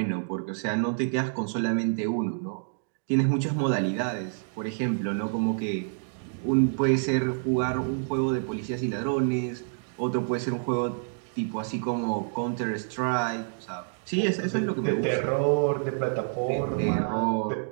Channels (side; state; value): left; silent; digital silence